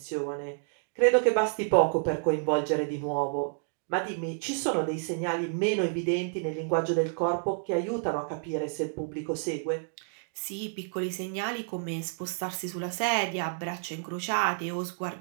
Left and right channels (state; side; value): silent; left; digital silence